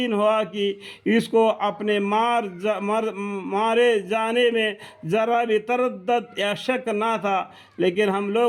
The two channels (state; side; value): identical; both; correlation 1.00